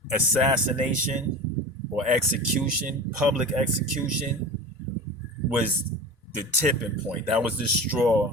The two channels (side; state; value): both; normal; correlation 0.32